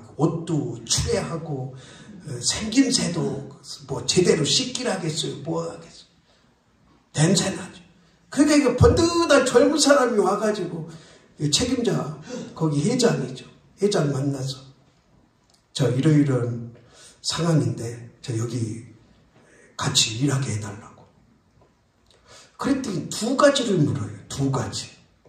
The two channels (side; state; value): both; identical; correlation 1.00